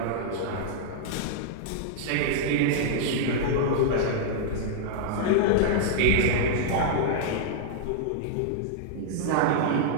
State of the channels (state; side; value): different; both; correlation -0.01